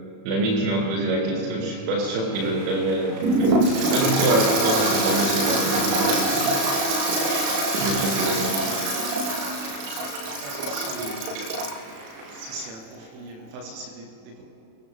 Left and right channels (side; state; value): left; late; 36 ms